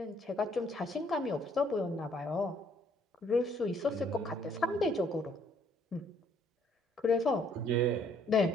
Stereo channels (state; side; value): normal; both; correlation 0.65